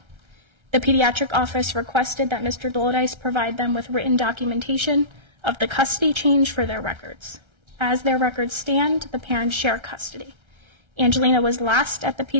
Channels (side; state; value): left; late; 1.3 ms